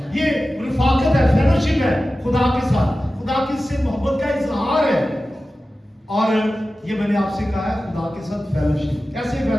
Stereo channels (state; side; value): normal; both; correlation 0.95